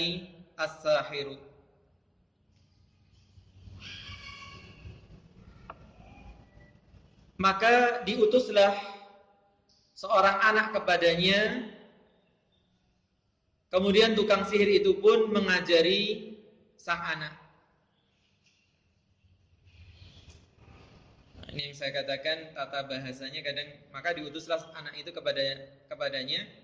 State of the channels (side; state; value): both; identical; correlation 1.00